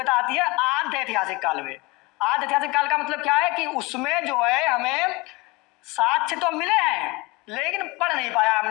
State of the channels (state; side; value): quieter; right; 24.3 dB